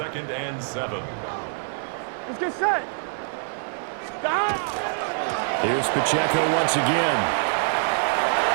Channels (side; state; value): left; silent; 58 dB below the other